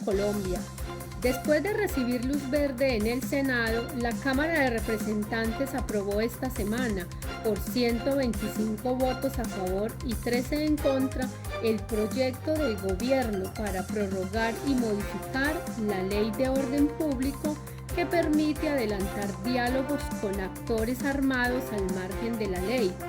Después de recibir luz verde en el Senado, la Cámara de Representantes aprobó esta semana, por 125 votos a favor y 13 en contra, el proyecto del gobierno para prorrogar y modificar la Ley de Orden Público que permite adelantar diálogos con actores armados al margen de la ley,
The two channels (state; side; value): identical; both; correlation 1.00